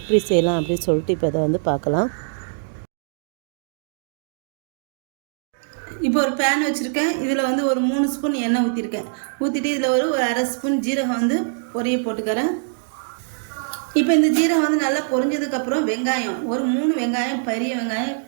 செய்யலாம் அப்படின்னு சொல்லிட்டு இப்போ இதை வந்து பார்க்கலாம். இப்போ ஒரு பேன் வச்சுருக்கேன். இதில் வந்து ஒரு 3 ஸ்பூன் எண்ணெய் ஊற்றிருக்கேன். ஊற்றிட்டு இதில் ஒரு அரை ஸ்பூன் ஜீரகம் வந்து பொரிய போட்டுக்கிறேன். இப்போ இந்த ஜீரகம் வந்து நல்லா பொரிஞ்சதுக்கப்புறம் வெங்காயம் ஒரு 3 வெங்காயம், பெரிய வெங்காயம்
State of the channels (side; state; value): left; silent; digital silence